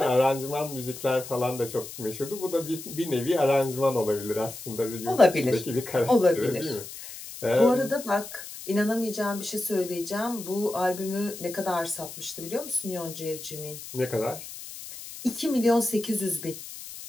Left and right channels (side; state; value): left; noise; hiss, 12 dB below the sound